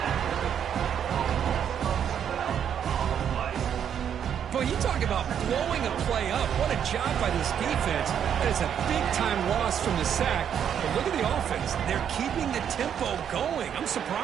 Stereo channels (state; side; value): quieter; left; 8.7 dB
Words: Boy, you talk about blowing a play up. What a job by this defense. That is a big-time loss from the sack. But look at the offense. They're keeping the tempo going. I'm